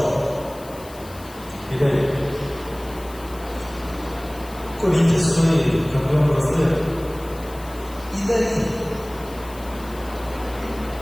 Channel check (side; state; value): left; noise; hiss, 20 dB below the sound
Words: E daí? Corinthians foi campeão brasileiro. E daí?